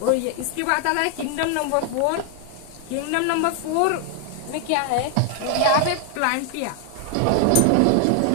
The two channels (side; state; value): both; different; correlation 0.00